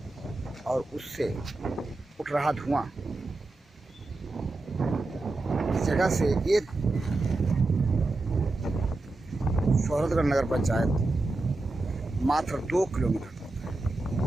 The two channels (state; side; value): quieter; left; 3.0 dB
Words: और उससे उठ रहा धुआं, इस जगह से ये शौहरतगढ़ नगर पंचायत मात्र 2 किलोमीटर